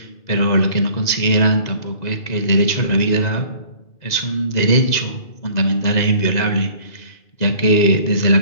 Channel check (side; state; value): right; late; 2.0 ms